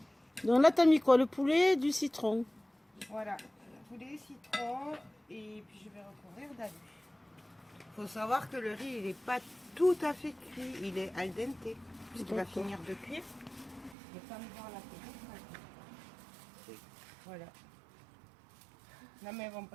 nous, Donc là, t'as mis quoi? Le poulet, du citron. Voilà, poulet, citron et puis je vais recouvrir d'alu. Il faut savoir que le riz il n'est pas tout à fait cuit, il est al dente puisqu'il va D'accord. finir de cuire. Le temps de voir la télé. Voilà. Non mais elles vont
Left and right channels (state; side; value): drops out; left; at 14.0 s